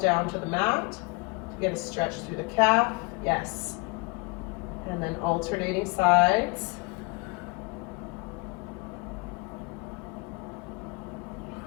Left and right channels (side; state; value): right; quieter; 28.9 dB